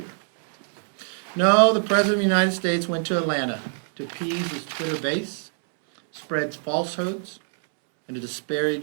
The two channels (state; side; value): silent; left; 62 dB below the other